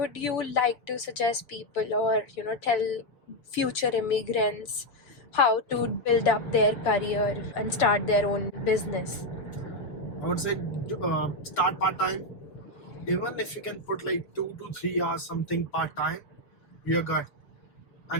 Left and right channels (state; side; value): late; right; 6.9 ms